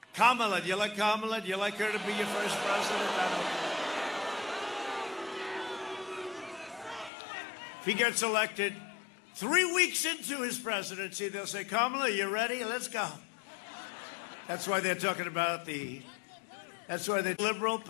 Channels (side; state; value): right; drops out; at 7.1 s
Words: Kamala. Do you like Kamala? Do you like her to be your first president? I don't know. If he gets elected 3 weeks into his presidency, they'll say, Kamala, you ready? Let's go. That's why they're talking about that's why the liberal